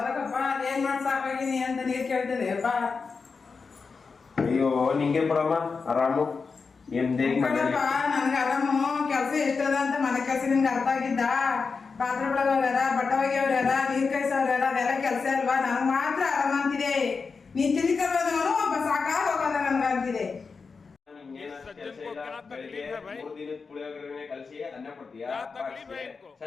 ಏನ್ ಮಾಡ್ಸಾಕಾಗಿನಿ ಅಂತ ನೀರ್ ಕೇಳ್ತದೆ ಅಪ್ಪ. ಅಯ್ಯೋ ನಿಂಗೆ ಬಿಡಮ್ಮ ಆರಾಮು ನನ್ಗೆ ಆರಾಮು ಕೆಲ್ಸ ಎಷ್ಟದ ಅಂತ ಮನೆ ಕೆಲ್ಸ ನಿಮ್ಗೆ ಅರ್ಥ ಆಗಿದ್ದ. ಪಾತ್ರೆ ಬೆಳಗವ್ರ ಬಟ್ಟೆ ಒಗೆಯವ್ರ ನೀರ್ ಕಾಯಿಸೋರ ಅದೆಲ್ಲ ಕೆಲ್ಸ ಅಲ್ವಾ? ನನಗ್ ಮಾತ್ರ ಆರಾಮ ಅಂತಿದೆ. ನೀನ್ ತಿನ್ಕಲ್ವನು ಒಬ್ಬ ಸಾಕಾಗ ಹೋಗಲ್ಲ ನನ್ಗ ಅಂತಿದೆ. ಕಲ್ಸಿ ಅನ್ನ ಕೊಡ್ತೀಯಾ,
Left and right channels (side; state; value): right; quieter; 4.9 dB